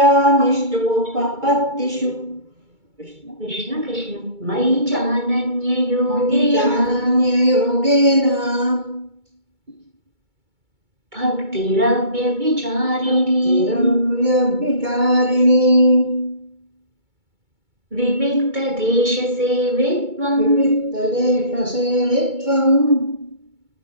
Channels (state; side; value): late; left; 2.2 ms